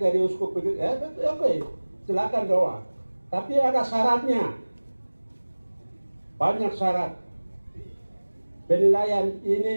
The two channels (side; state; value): both; inverted; correlation -1.00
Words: uskup begitu. Oke, silakan doa. Tapi ada syaratnya. Banyak syarat. Penilaian